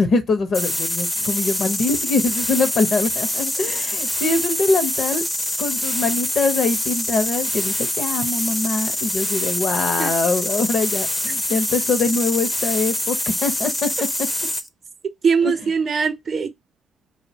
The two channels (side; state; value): both; normal; correlation 0.80